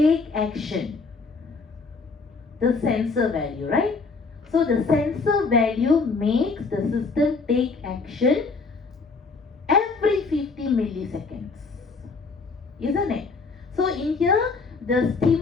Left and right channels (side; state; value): right; quieter; 4.3 dB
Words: action? The sensor value, right? So the sensor value makes the system take action every 50 milliseconds, isn't it? So in here, the